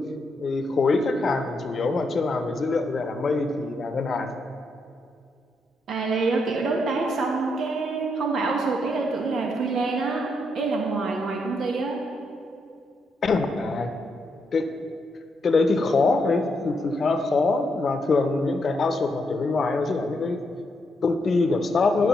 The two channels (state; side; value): normal; both; correlation 0.79